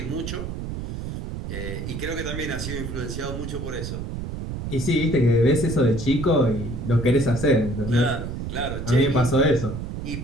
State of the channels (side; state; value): right; noise; rumble, 6 dB below the sound